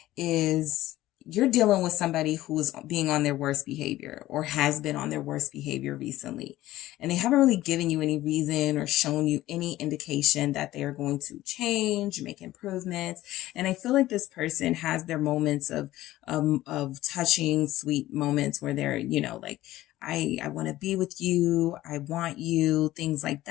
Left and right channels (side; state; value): right; quieter; 15.7 dB